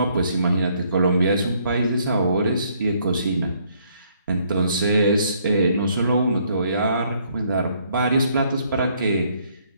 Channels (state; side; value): inverted; both; correlation -0.67